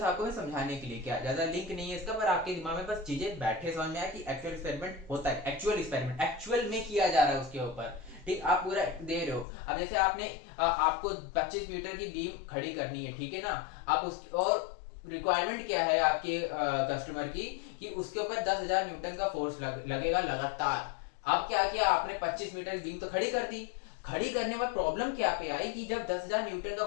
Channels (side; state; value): right; drops out; at 9.5 s